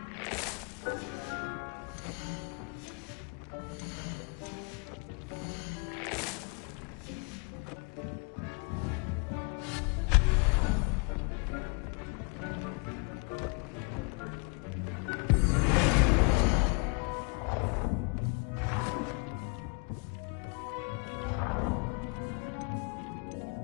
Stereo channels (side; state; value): right; quieter; 33.8 dB